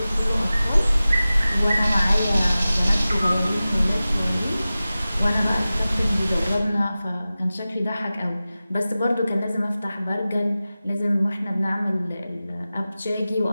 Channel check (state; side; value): inverted; both; correlation -0.96